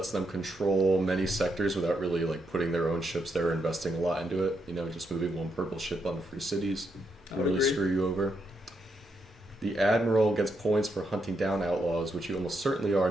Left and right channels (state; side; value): normal; both; correlation 0.80